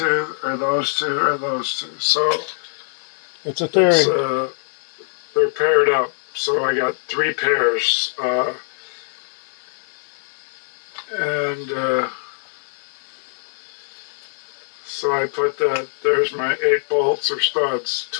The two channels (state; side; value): silent; right; 56 dB below the other